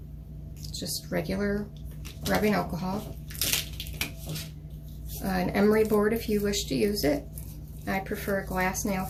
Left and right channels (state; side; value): identical; both; correlation 1.00